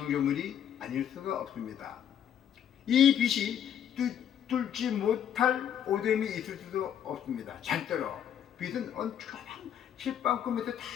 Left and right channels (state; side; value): quieter; right; 9.6 dB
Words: 아닐 수가 없습니다. 이 빛이 뚫지 못할 어둠이 있을 수도 없습니다. 절대로. 빛은 언짢은 실방꿈에서 다